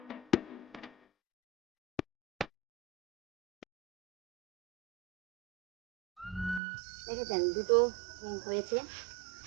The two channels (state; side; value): drops out; left; at 6.6 s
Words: দেখেছেন দুটো হয়েছে